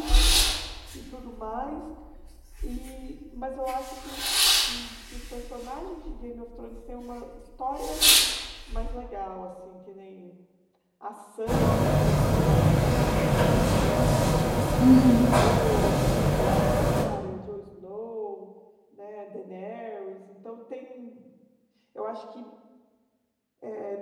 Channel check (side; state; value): both; identical; correlation 1.00